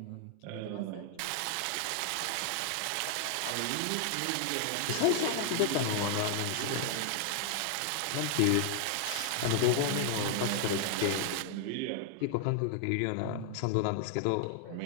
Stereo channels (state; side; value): different; both; correlation 0.00